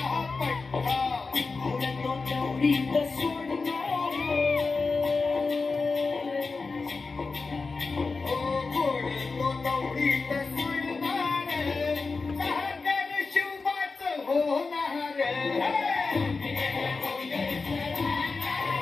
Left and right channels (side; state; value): right; quieter; 4.2 dB